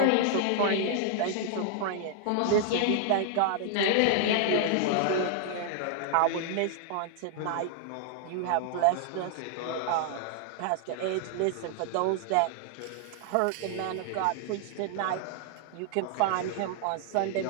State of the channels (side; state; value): both; different; correlation 0.00